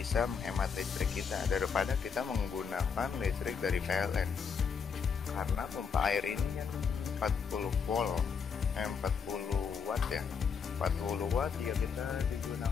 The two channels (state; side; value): quieter; right; 6.2 dB